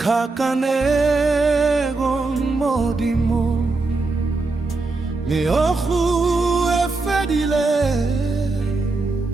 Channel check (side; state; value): left; quieter; 3.5 dB